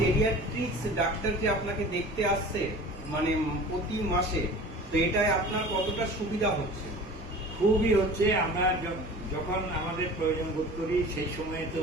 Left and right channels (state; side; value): normal; both; correlation 0.40